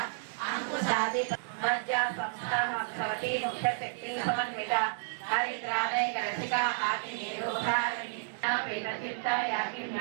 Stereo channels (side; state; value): left; silent; digital silence